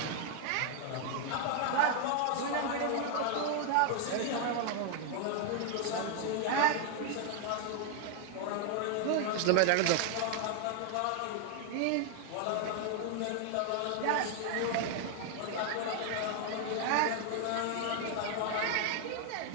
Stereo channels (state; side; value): different; both; correlation 0.00